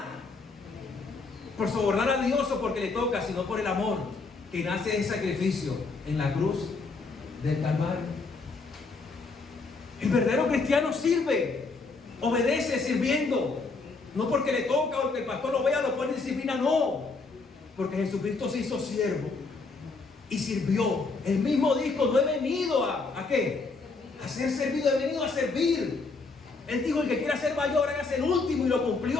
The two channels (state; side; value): quieter; right; 4.0 dB